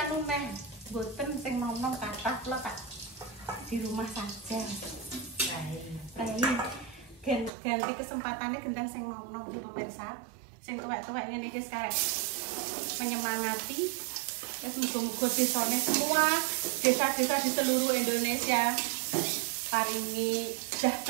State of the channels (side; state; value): left; drops out; at 7.5 s